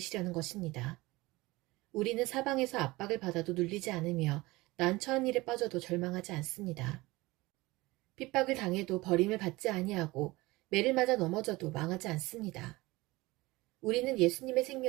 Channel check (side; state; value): left; quieter; 21.0 dB